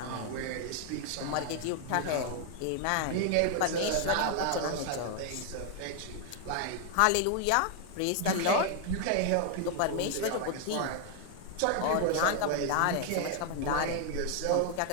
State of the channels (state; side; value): different; both; correlation 0.01